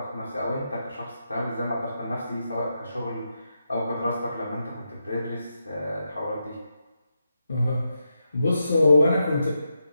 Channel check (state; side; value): inverted; both; correlation -0.85